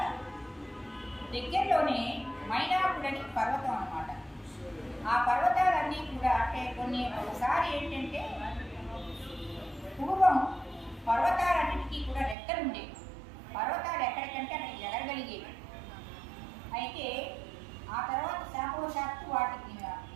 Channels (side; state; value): left; drops out; at 12.4 s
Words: దగ్గరలోనే మైనాకుడని పర్వతం అన్నమాట. ఆ పర్వతాలన్నీ కూడా అంటే కొన్ని ఒకసారి ఏంటంటే పూర్వం పర్వతాలన్నింటికీ కూడా రెక్కలు ఉండేవి. పర్వతాలు ఎక్కడికంటే అక్కడికి ఎగరగలిగేవి. అయితే ఆ తర్వాత శాపవశాత్తు వాటికి